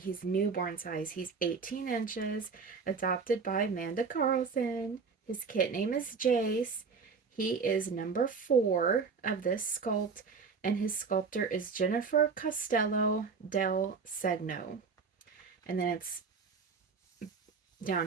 newborn size. He's 18 inches, adopted by Amanda Carlson. His kit name is Jace. He is number 4 of this sculpt, and his sculptor is Jennifer Costello del Segno. And then it's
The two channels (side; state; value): left; quieter; 5.2 dB